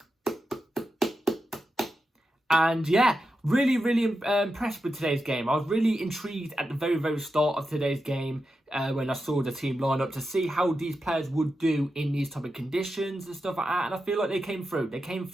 And yeah, really, really impressed with today's game. I was really intrigued at the very, very start of today's game when I saw the team line up to see how these players would do in these type of conditions and stuff like that. And I feel like they came through.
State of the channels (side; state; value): both; normal; correlation 0.89